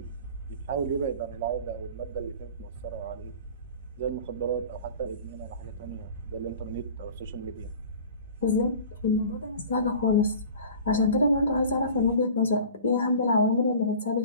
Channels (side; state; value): both; inverted; correlation -0.42